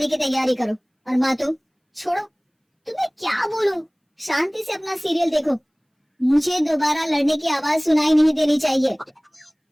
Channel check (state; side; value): identical; both; correlation 1.00